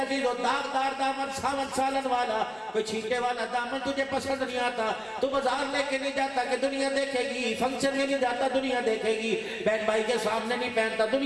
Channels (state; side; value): identical; both; correlation 1.00